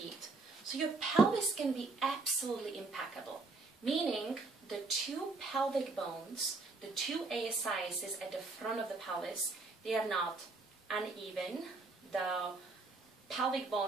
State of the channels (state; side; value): quieter; left; 3.6 dB